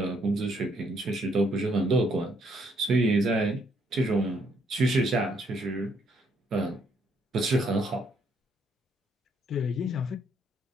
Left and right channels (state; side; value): normal; both; correlation 0.71